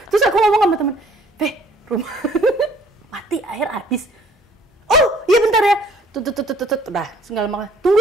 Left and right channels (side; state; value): both; normal; correlation 0.58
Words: Terus aku ngomong sama teman, rumah mati, air habis. Oh, iya bentar ya. Udah, segala macam. Tunggu